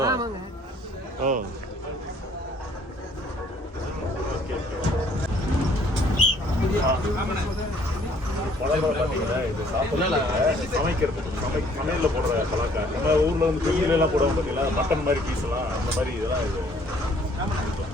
ஓ, சமையல்ல போடுற பலாக்காய். நம்ம ஊர்ல வந்து கோயில எல்லாம் போடுவோம் பார்த்தீங்களா, மட்டன் மாதிரி பீஸ் எல்லாம், அந்த மாதிரி இதெல்லாம் இது.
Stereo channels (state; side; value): normal; both; correlation 0.60